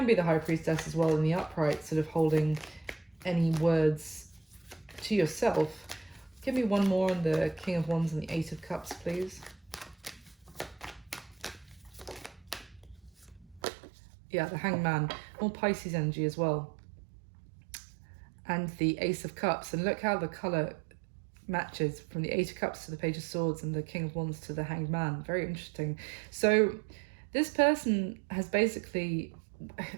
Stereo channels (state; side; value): drops out; left; at 13.6 s